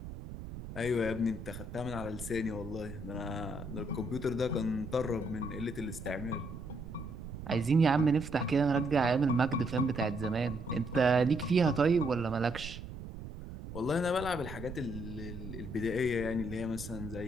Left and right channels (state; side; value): noise; right; rumble, 11 dB below the sound